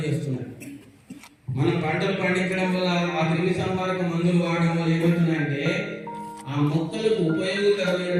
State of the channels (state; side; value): identical; both; correlation 1.00